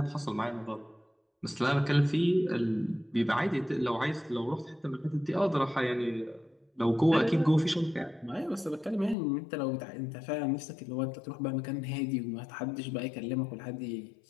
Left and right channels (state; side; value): drops out; right; at 9.2 s